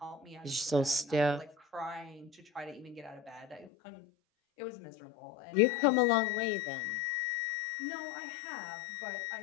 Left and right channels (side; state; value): right; drops out; at 3.7 s